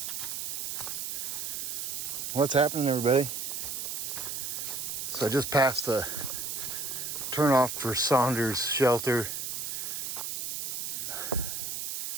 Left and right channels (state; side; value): noise; right; hiss, 4 dB below the sound